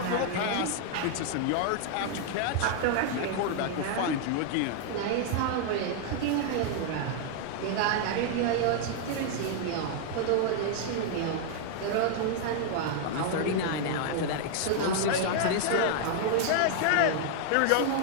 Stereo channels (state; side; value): different; both; correlation 0.00